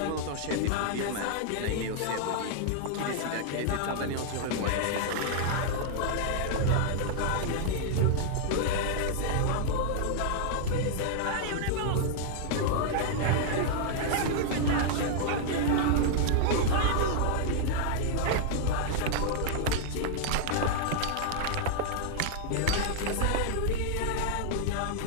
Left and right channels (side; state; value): both; different; correlation -0.01